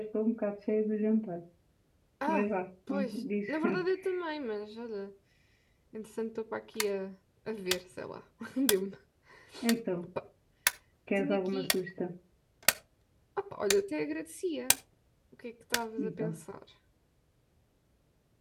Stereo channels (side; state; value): both; identical; correlation 1.00